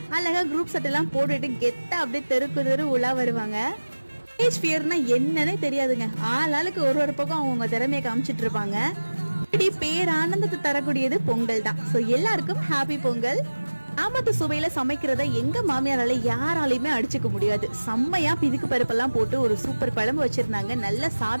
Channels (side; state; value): both; inverted; correlation -1.00